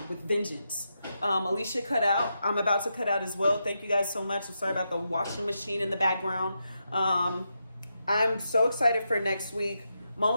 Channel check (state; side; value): inverted; both; correlation -0.85